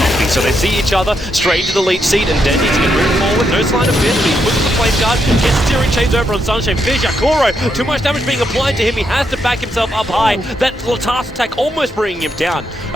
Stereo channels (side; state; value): both; normal; correlation 0.80